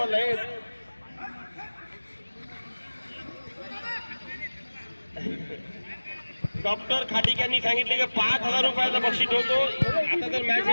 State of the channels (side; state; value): both; inverted; correlation -1.00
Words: डॉक्टर खाटिक यांनी सांगितले की 5,000 रुपयाचा बक्षीस ठेवतो. आता तर मॅच